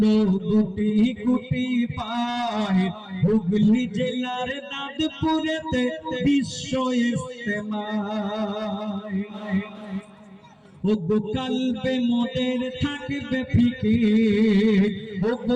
গুটি গুটি পায়। হুগলি জেলার দাঁতপুরেতে বিশ্ব ইজতেমায়। ওগো কালবে মোদের থাকবে ফিকির,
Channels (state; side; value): identical; both; correlation 1.00